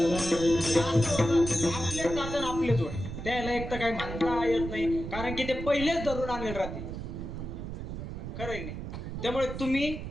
आपलेच जातं आपलेच ओढ. त्याला एक तर काही म्हणता येत नाही कारण की ते पहिलेच धरून आणले राहते. खरं आहे नाही. त्यामुळे तुम्ही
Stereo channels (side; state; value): right; noise; rumble, 7 dB below the sound